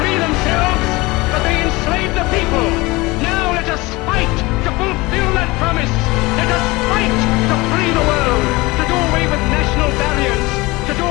themselves, but they enslave the people. Now let us fight to fulfill that promise. Let us fight to free the world, to do away with national barriers, to do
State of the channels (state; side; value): quieter; right; 22.3 dB